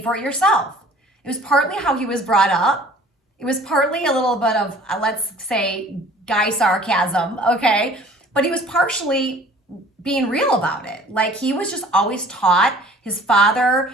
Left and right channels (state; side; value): normal; both; correlation 0.50